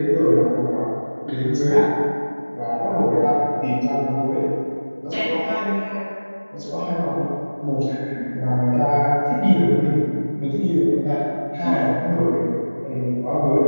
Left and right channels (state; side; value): inverted; both; correlation -1.00